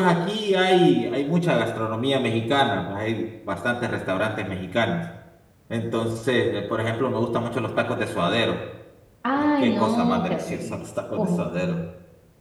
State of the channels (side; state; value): both; identical; correlation 1.00